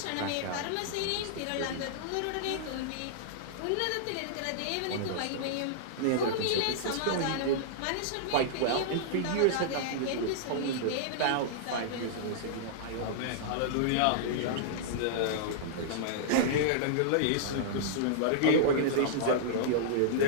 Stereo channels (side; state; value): both; different; correlation -0.02